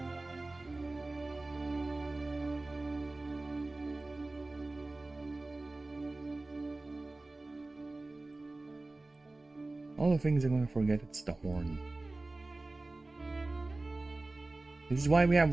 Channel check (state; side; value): quieter; left; 3.1 dB